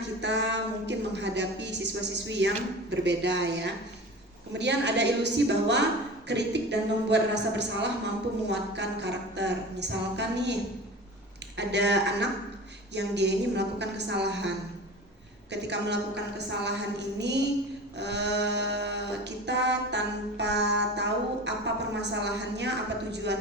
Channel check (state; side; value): normal; both; correlation 0.35